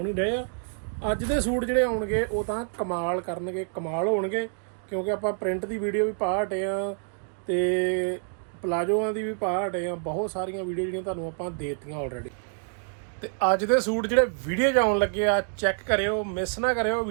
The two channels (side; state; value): left; silent; digital silence